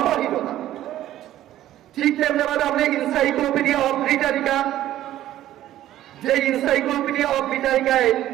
ঠিক তেমনি আপনি ইনসাইক্লোপিডিয়া অফ ব্রিটানিকা, যে ইনসাইক্লোপিডিয়া অফ ব্রিটানিকায়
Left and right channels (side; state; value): left; quieter; 13.3 dB